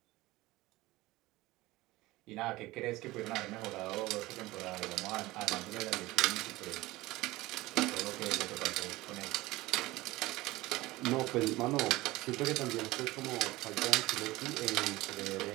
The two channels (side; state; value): left; quieter; 19.1 dB